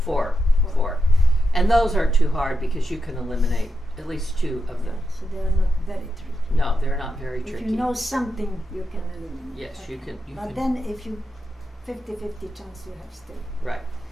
4. 4. And those aren't too hard because you can eliminate at least 2 of them. So they are not very tricky. No, they're not very If tricky. you know something, you can eliminate. Yes, Okay. you can. But then if you 50-50 chance you have still. Right,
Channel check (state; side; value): normal; both; correlation 0.86